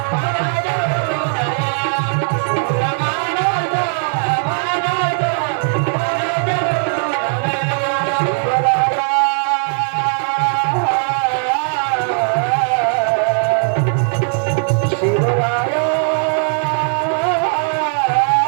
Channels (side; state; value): left; silent; 60 dB below the other